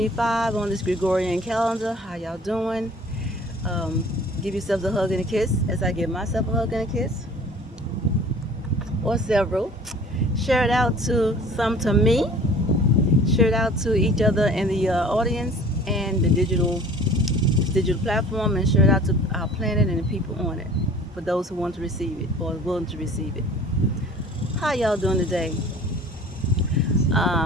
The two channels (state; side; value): normal; both; correlation 0.47